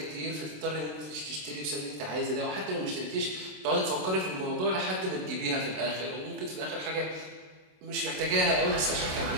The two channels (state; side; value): late; left; 27 ms